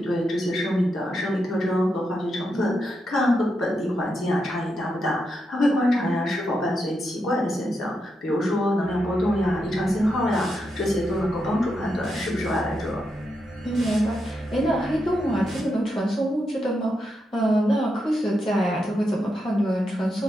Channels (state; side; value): normal; both; correlation 0.84